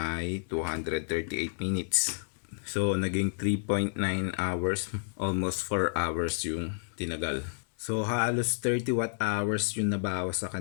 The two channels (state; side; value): silent; right; digital silence